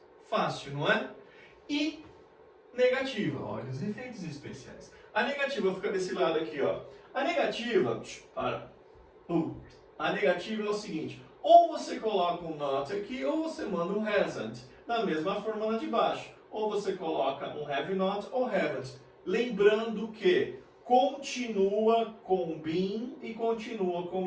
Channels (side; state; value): both; identical; correlation 1.00